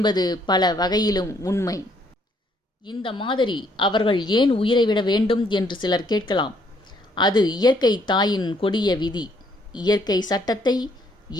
பல வகையிலும் உண்மை. இந்த மாதிரி அவர்கள் ஏன் உயிரை விட வேண்டும் என்று சிலர் கேட்கலாம். அது இயற்கை தாயின் கொடிய விதி. இயற்கை சட்டத்தை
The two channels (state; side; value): normal; both; correlation 0.68